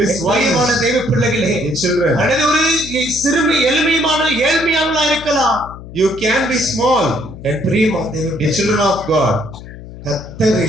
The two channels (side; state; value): left; noise; hum, 15 dB below the sound